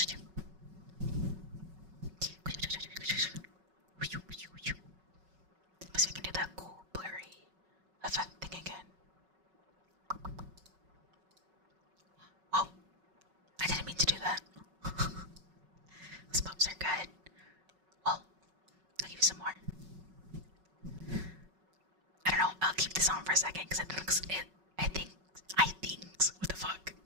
Let's see if I can do that cool blurry effect thing again. Oh, I didn't mean to do that. Those pops are good. Well, I'll give you some more. I don't know, I'll keep this on for a second because I think, what the fuck?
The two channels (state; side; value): late; left; 5.4 ms